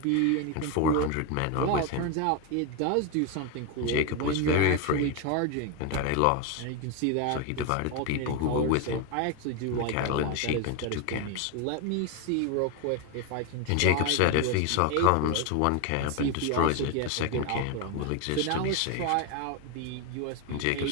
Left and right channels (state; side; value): different; both; correlation 0.01